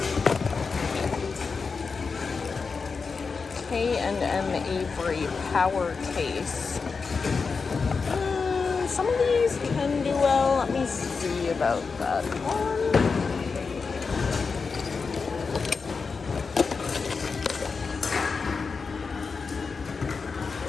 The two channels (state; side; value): quieter; right; 4.9 dB